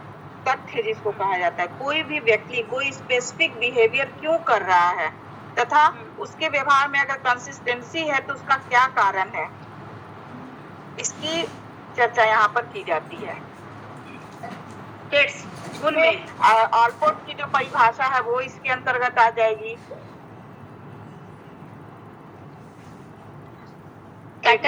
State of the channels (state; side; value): identical; both; correlation 1.00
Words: तथ्य जिसको कहा जाता है। कोई भी व्यक्ति कोई स्पेसिफिक बिहेवियर क्यों कर रहा है तथा उसके व्यवहार में अगर कंसिस्टेंसी है तो उसका क्या कारण है, इसकी चर्चा यहाँ पर की जाती है। ट्रेड्स गुण में ऑलपोर्ट की जो परिभाषा है वो इसके अंतर्गत आ जाएगी।